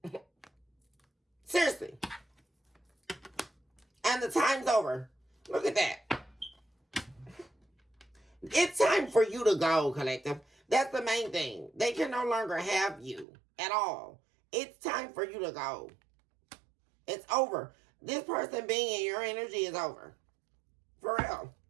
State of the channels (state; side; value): drops out; left; at 13.2 s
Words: Seriously. And the time's over. Look at that. It's time for you to go, collective. That's the main thing. They can no longer have you at all. It's time for you to go. It's over. This person being in your energy is over. For real.